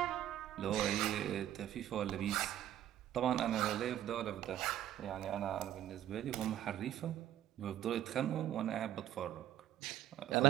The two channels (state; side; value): quieter; left; 12.2 dB